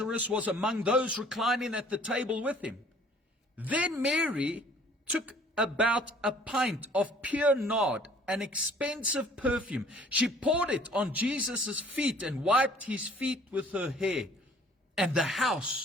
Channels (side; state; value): both; normal; correlation 0.55